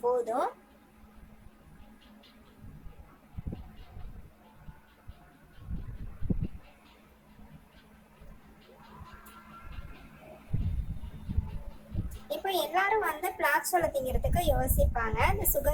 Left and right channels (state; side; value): identical; both; correlation 1.00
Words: போதும். இப்போ எல்லாரும் வந்து பிளாச்சோலை திங்கிறதுக்கு யோசிப்பாங்க. இந்த